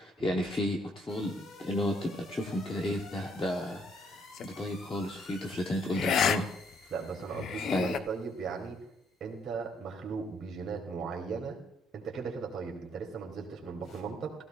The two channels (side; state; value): both; normal; correlation 0.69